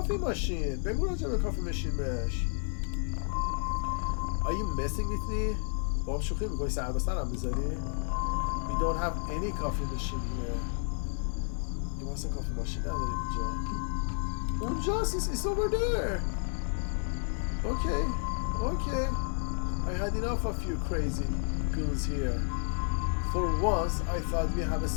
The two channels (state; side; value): silent; right; 57 dB below the other